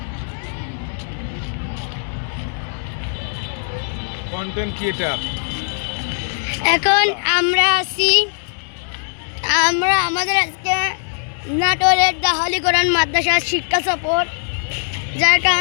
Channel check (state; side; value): silent; right; digital silence